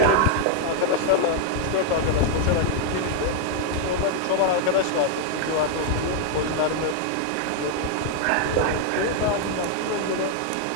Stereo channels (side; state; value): both; different; correlation 0.00